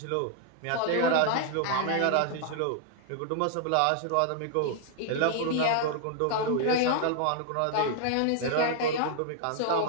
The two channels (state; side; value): different; both; correlation 0.00